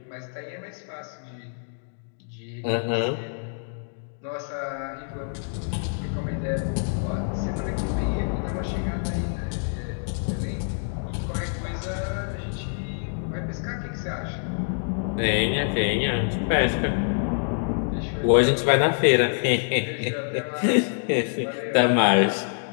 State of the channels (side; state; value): right; silent; digital silence